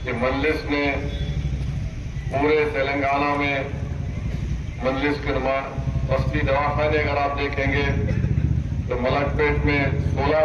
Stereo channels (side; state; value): both; identical; correlation 1.00